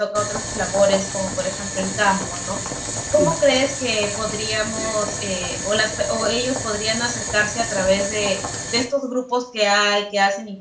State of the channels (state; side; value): identical; both; correlation 1.00